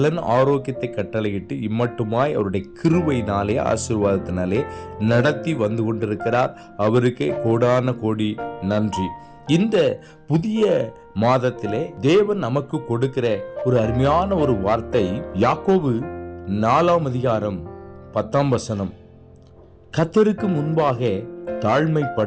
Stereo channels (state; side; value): identical; both; correlation 1.00